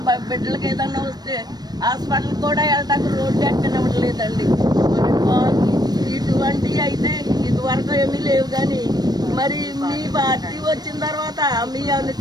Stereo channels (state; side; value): late; left; 0.19 ms